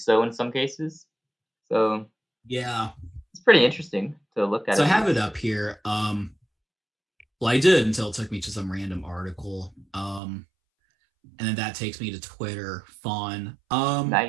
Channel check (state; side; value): drops out; left; at 10.2 s